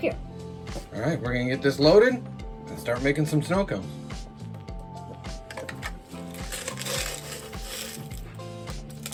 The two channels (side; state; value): both; identical; correlation 1.00